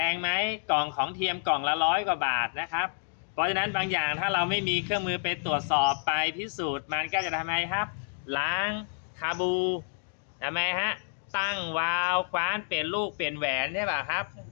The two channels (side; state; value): right; silent; digital silence